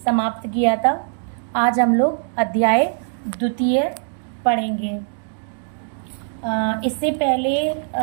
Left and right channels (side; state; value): left; silent; digital silence